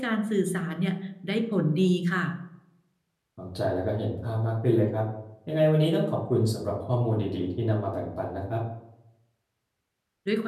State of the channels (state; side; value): identical; both; correlation 1.00